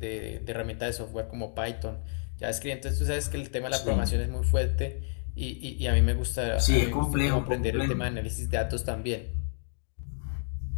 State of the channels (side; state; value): right; silent; digital silence